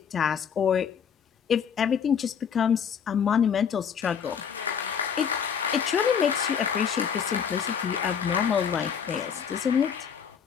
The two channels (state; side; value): quieter; right; 7.3 dB